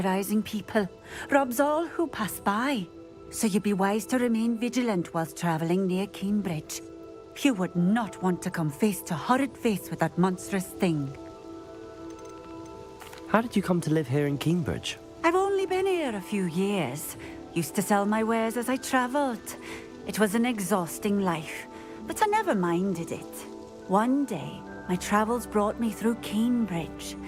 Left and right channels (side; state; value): both; identical; correlation 1.00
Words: people, robs all who pass by. So you'd be wise to remain vigilant whilst traveling near Cambridge. You would not want to come face to horrid face with that monstrous thing. How did you come to live here in Cambridge? I've only been here a few years. Used to sell my wares as I travelled. It was an exhausting life, but I never minded it. One day, my travels brought me through Cambridge.